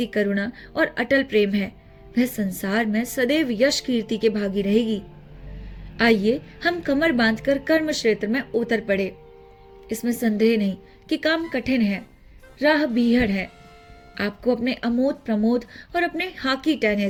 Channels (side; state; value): both; identical; correlation 1.00